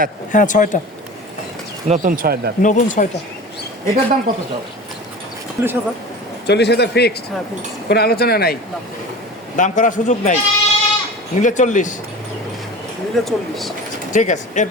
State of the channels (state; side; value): normal; both; correlation 0.35